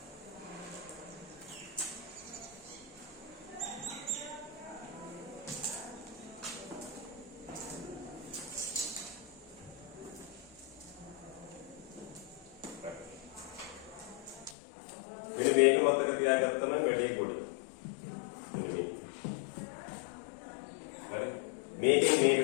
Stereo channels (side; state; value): right; drops out; at 14.6 s